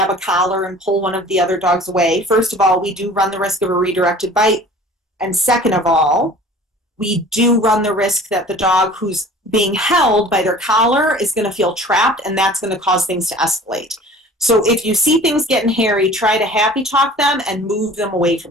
a collar and pull one of the other dogs away, first of all, we do run the risk of a redirected bite. And second of all, we do run the risk that the dog who's being held by their collar is going to feel trapped, and that's going to cause things to escalate. So if you see things getting hairy, try to happy talk them and move them away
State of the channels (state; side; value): normal; both; correlation 0.45